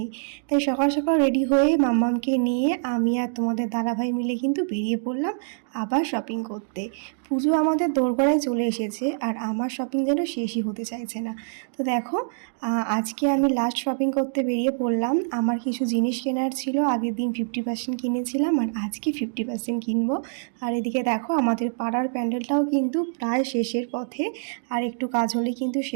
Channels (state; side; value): silent; left; digital silence